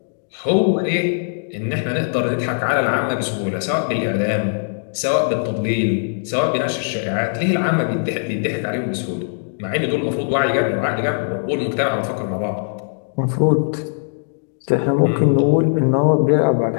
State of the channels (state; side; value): silent; right; digital silence